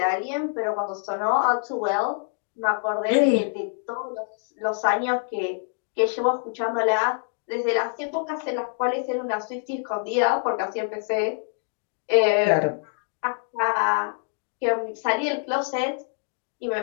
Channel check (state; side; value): silent; right; 55 dB below the other